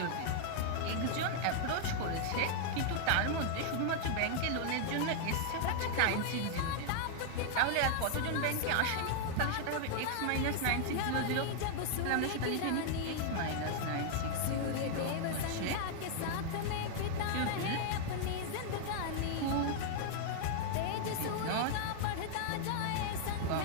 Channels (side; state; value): both; different; correlation 0.00